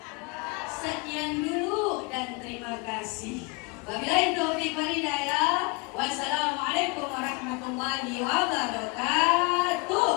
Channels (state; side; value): quieter; right; 27.5 dB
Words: Sekian dulu dan terima kasih. Wabillahi taufiq wal hidayah. Wassalamualaikum warahmatullahi wabarakatuh.